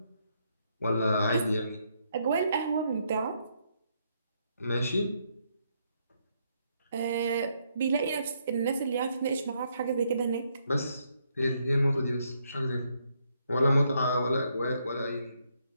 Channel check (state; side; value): inverted; both; correlation -0.75